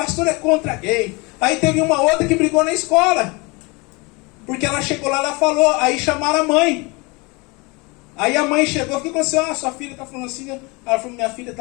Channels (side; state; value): right; quieter; 27.1 dB